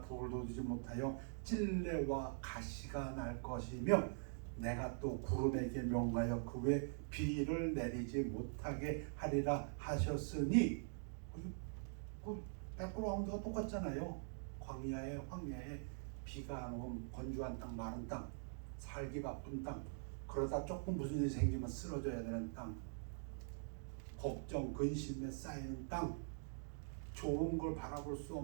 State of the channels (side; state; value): left; silent; digital silence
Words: 돋우지 못하여 찔레와 가시가 날 것이며 내가 또 구름에게 명하여 그 외 비를 내리지 못하게 하리라 하셨으니. 그 백그라운드가 똑같잖아요. 황야에 비가 안 오면 건조한 땅, 마른 땅, 살기 바쁜 땅, 그러다 조금 무슨 일이 생기면 쓰러져야 되는 땅, 걱정, 근심에 쌓이는 땅, 좋은 걸 바라볼 수